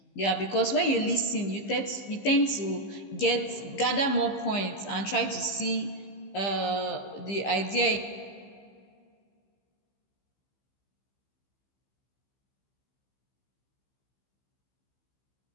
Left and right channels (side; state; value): right; late; 15 ms